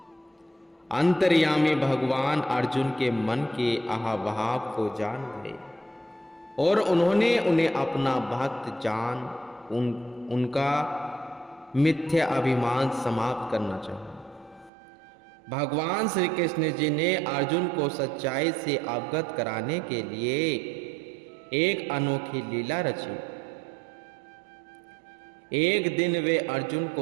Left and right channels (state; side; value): drops out; left; at 14.7 s